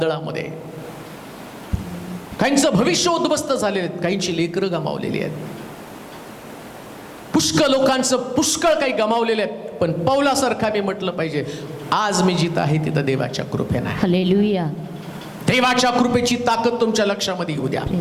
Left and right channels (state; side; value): identical; both; correlation 1.00